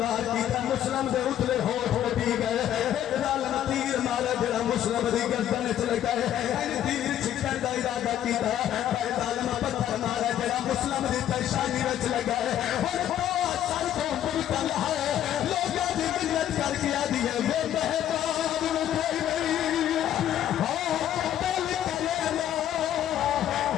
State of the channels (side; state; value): right; quieter; 11.2 dB